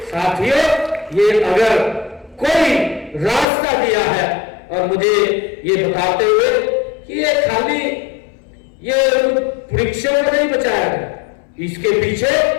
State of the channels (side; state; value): right; drops out; at 3.5 s